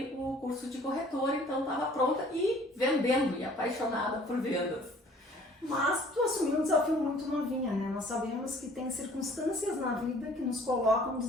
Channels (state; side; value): normal; both; correlation 0.54